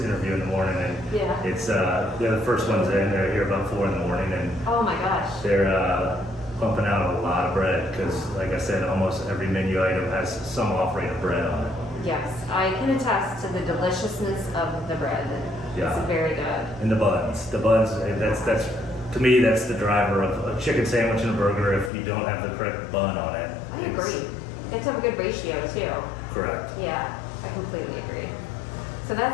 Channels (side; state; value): right; drops out; at 21.9 s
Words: interview in the morning, and it's they're the first ones in. They're here about 4 in the morning, and oh my gosh, they're pumping out a lot of bread because, like I said, almost every menu item has some offering of bread on it. Yes, I can attest to the deliciousness of the bread. Yeah. It's very good. And the buns, that's to me, that's the driver of a chicken sandwich and a burger. If you don't have the correct bun on it, I agree. It's a good ratio too. Correct. Yeah, I completely agree. So